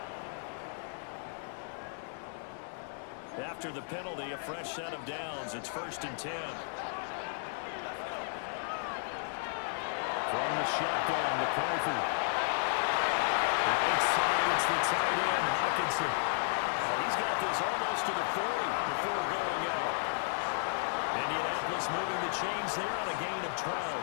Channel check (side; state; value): right; silent; digital silence